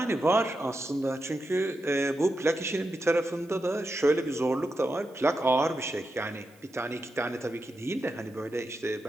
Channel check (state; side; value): noise; right; hiss, 30 dB below the sound